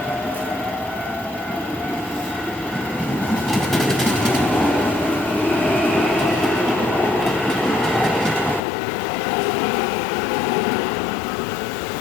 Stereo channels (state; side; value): drops out; right; at 8.6 s